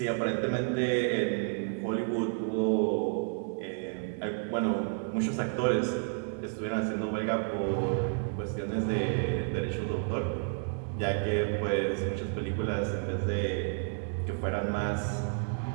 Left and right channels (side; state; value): left; silent; 57 dB below the other